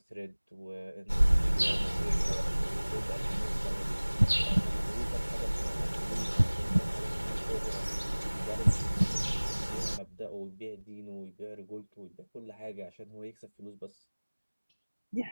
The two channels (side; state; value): both; inverted; correlation -1.00